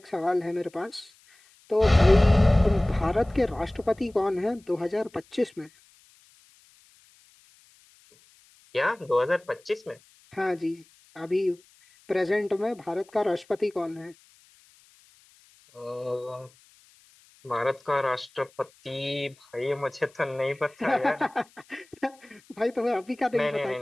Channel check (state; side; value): noise; left; hiss, 30 dB below the sound